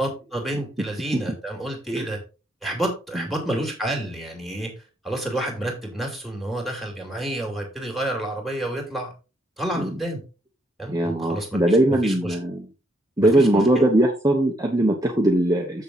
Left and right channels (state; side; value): normal; both; correlation 0.73